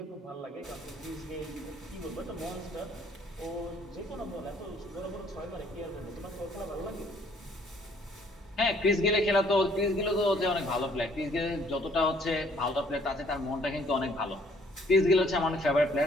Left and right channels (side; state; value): both; normal; correlation 0.62